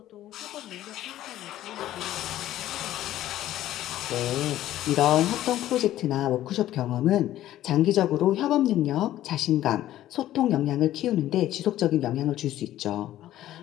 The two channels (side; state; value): right; quieter; 13.5 dB